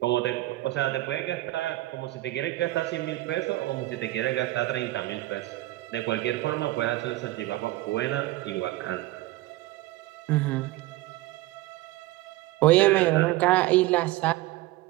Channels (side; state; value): left; quieter; 17.8 dB